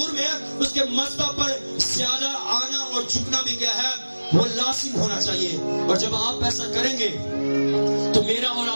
میں اس کے مذبح پر زیادہ آنا اور جھکنا بھی کیا ہے وہ لازم ہونا چاہیے. اور جب آپ ایسا کریں گے تو میرا اور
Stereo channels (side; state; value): both; inverted; correlation -1.00